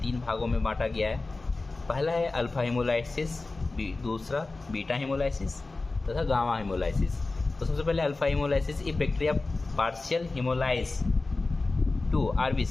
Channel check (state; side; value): quieter; right; 3.4 dB